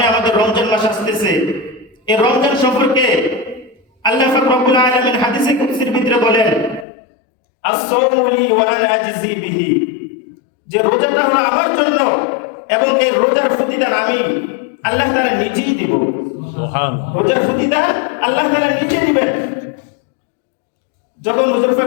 আমাদের রমজান মাস আসতেছে, এই রমজান সম্পর্কে আল্লাহ পাক রব্বুল আলামিন হাদিসে কুদসির ভিতরে বলেন, আস-সাওমু লি ওয়া আনা আজজি বিহি, যে রোজাটা হলো আমার জন্য এবং এই রোজার প্রতিদান আমি আল্লাহ তাআলা নিজেই দিব। সুবহানাল্লাহ, রোজার প্রতিদান আল্লাহ তাআলা নিজেই দিবেন। যখন হুজুর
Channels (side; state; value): right; drops out; at 6.9 s